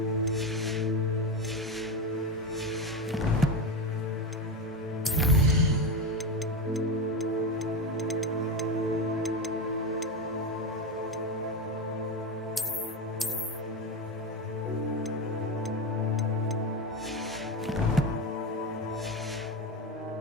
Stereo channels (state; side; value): normal; both; correlation 0.17